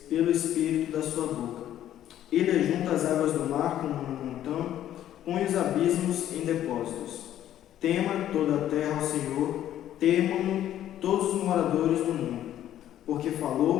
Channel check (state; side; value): quieter; right; 11.8 dB